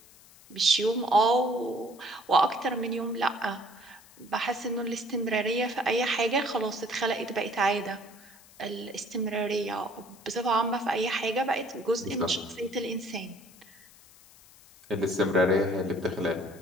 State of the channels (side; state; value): left; noise; hiss, 24 dB below the sound